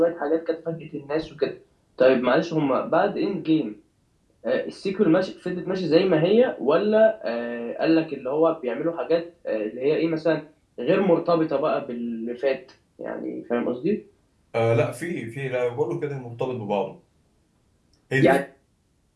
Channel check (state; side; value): identical; both; correlation 1.00